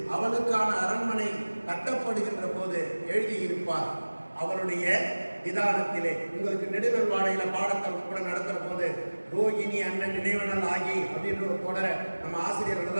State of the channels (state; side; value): inverted; both; correlation -1.00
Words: அவளுக்கான அரண்மனை கட்டப்படுகின்ற போது எழுதியிருப்பார். அவருடைய நிதானத்திலே உங்களுக்கு நெடுநல் வாடையில பாடத்தல் கூட நடத்துற போது ரோகிணி அண்ணன் நினைவனல் ஆகி அப்படின்ற ஒரு தொடரை நம்ம ஆசிரியர்கள்